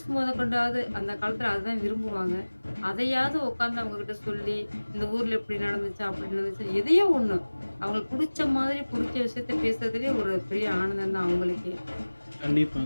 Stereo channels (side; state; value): both; inverted; correlation -1.00